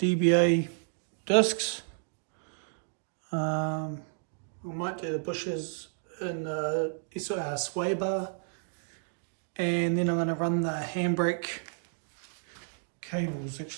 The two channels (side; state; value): left; silent; digital silence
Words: discs. I might do the bushes in sway bar. And then I'm going to run the handbrake cables,